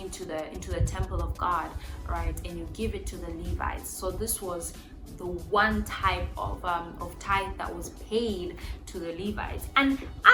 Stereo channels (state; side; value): identical; both; correlation 1.00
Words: the temple of God, right? And you give it to the Levites. So this was the one type of tithe that was paid to the Levites. And